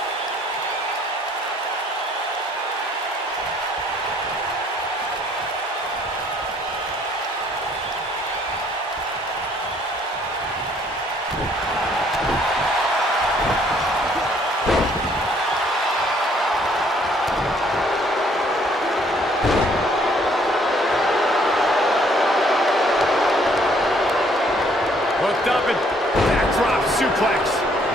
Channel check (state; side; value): normal; both; correlation 0.63